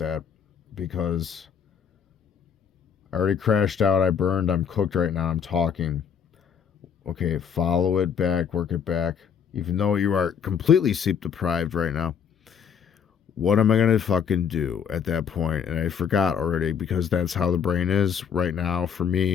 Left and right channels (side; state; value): right; quieter; 7.5 dB